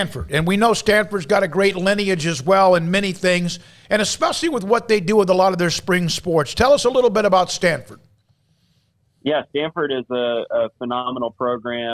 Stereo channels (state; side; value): identical; both; correlation 1.00